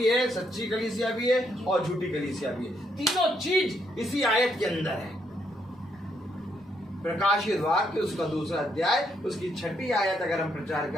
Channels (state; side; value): normal; both; correlation 0.75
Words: है, सच्ची कलीसिया भी है और झूठी कलीसिया भी है। तीनों चीज इसी आयत के अंदर है। प्रकाशित वाक्य उसका 2रा अध्याय, उसकी 6ठी आयत अगर हम प्रचार